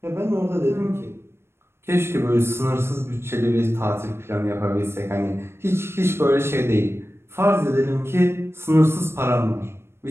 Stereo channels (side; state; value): left; late; 0.12 ms